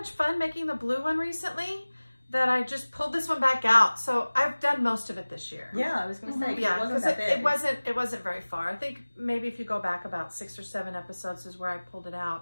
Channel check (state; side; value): inverted; both; correlation -1.00